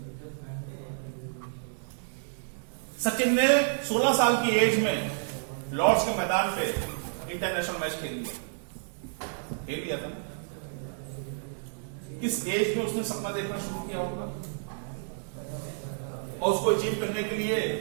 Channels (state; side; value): silent; left; digital silence